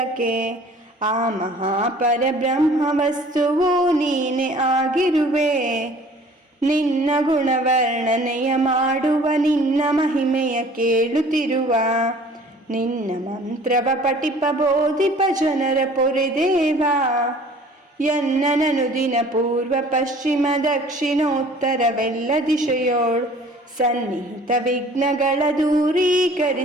ಆ ಮಹಾಪರಬ್ರಹ್ಮ ವಸ್ತುವು ನೀನೆ ಆಗಿರುವೆ. ನಿನ್ನ ಗುಣವರ್ಣನೆಯ ಮಾಡುವ ನಿನ್ನ ಮಹಿಮೆಯ ಕೇಳುತ್ತಿರುವ. ನಿನ್ನ ಮಂತ್ರವ ಪಠಿಪ ಬೋಧಿಪ ಜನರ ಪೊರೆದೇವ. ಎನ್ನನನು ದಿನ ಪೂರ್ವ ಪಶ್ಚಿಮ ದಕ್ಷಿಣೋತ್ತರವೆಲ್ಲ ದಿಶೆಯೋಳು ಸನ್ನಿಹಿತ ವಿಘ್ನಗಳ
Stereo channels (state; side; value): normal; both; correlation 0.50